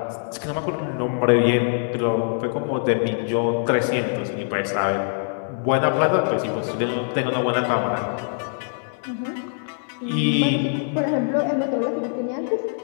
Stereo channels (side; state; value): right; silent; 63 dB below the other